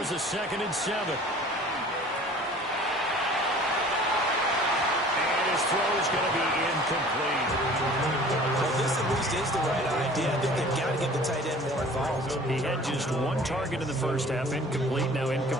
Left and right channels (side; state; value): both; normal; correlation 0.47